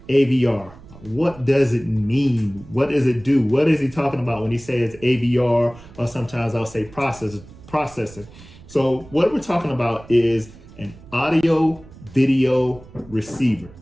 AVR. What does it mean? What does it do? What is he talking about when he says AVR, or sometimes I'll say processor. So what we're talking about is an audio video receiver.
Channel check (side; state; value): right; noise; rumble, 20 dB below the sound